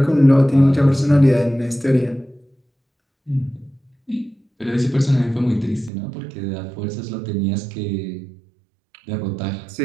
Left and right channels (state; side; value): drops out; left; at 5.9 s